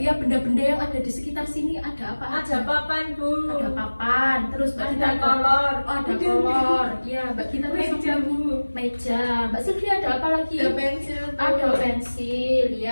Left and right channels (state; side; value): inverted; both; correlation -1.00